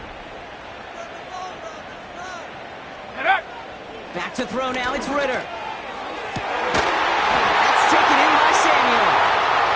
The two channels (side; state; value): both; identical; correlation 1.00